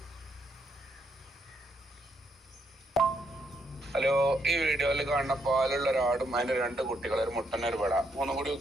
ഹലോ, ഈ വീഡിയോയിൽ കാണുന്ന പാലുള്ള ഒരാടും അതിന്റെ 2 കുട്ടികൾ, ഒരു മുട്ടന് ഒരു പെട, 3 കൂടി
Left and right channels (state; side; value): normal; both; correlation 0.77